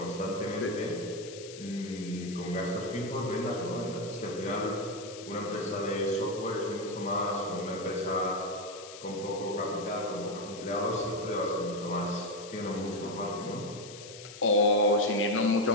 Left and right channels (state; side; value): noise; left; hiss, 15 dB below the sound